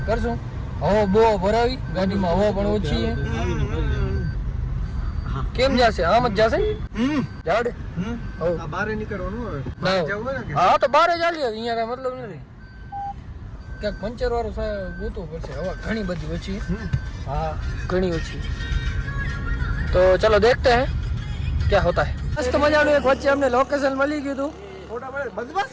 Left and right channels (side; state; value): both; identical; correlation 1.00